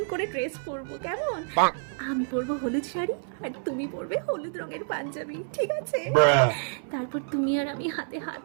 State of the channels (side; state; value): left; silent; 59 dB below the other